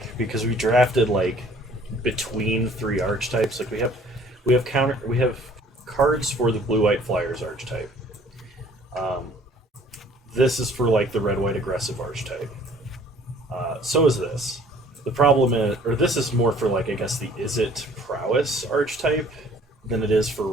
because we drafted like between 3 archetypes. Like we have cards for the Blue-White Flyers archetype. This is for like the Red-White Aggressive archetype. So is this. The problem is, or this is more for like I guess the Is It Prowess archetype than it is for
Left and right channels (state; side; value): normal; both; correlation 0.55